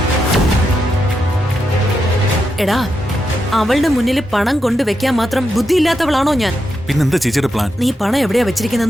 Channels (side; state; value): both; normal; correlation 0.85